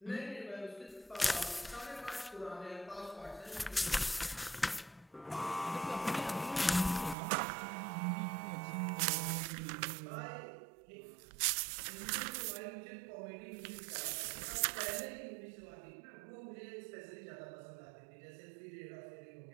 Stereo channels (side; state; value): left; drops out; at 7.2 s